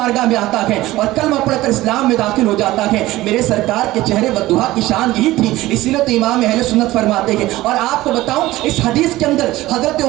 میں آتا ہے اور کلمہ پڑھ کر اسلام میں داخل ہو جاتا ہے. میرے سرکار کے چہرے والدہا کی شان یہی تھی, اسی لیے تو امام اہل سنت فرماتے ہیں. اور آپ کو بتاؤں اس حدیث کے اندر حضرت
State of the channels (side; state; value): left; quieter; 17.2 dB